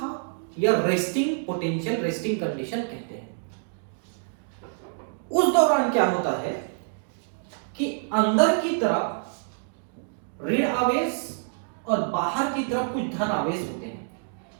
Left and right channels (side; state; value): left; silent; digital silence